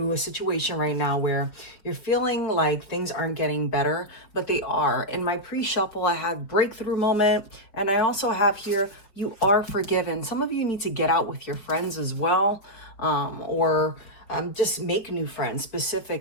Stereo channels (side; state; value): right; late; 5.1 ms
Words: a situation right now where you're feeling like things aren't getting better, but they are. In my pre-shuffle, I had breakthrough moment, and I also have here, you are forgiven. Some of you need to get out with your friends as well, or just make new friends.